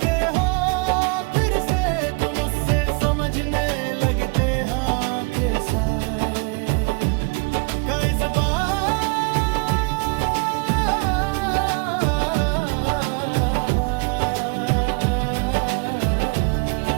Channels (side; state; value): left; quieter; 31.6 dB